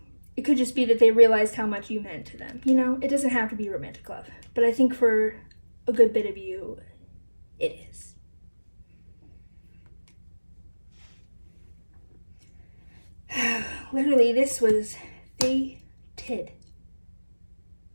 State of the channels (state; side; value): inverted; both; correlation -1.00